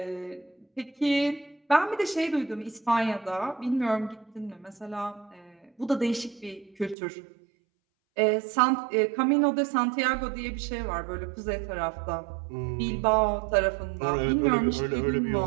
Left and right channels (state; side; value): drops out; left; at 7.0 s